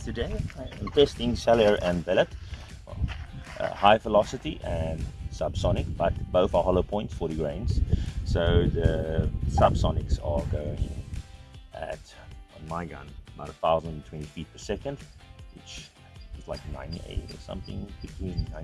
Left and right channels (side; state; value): both; identical; correlation 1.00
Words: today I am testing cellular and billet, high velocity and subsonic, but both are hollow points, 40 grains. So the subsonics are going at, on my gun, about 1,020 feet per second, which is like 98 or something, between